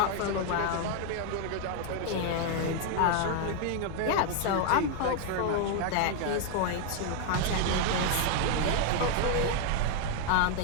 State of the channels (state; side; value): different; both; correlation 0.00